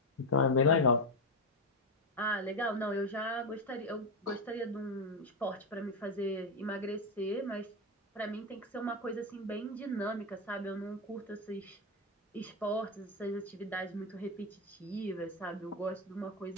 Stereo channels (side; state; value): both; normal; correlation 0.09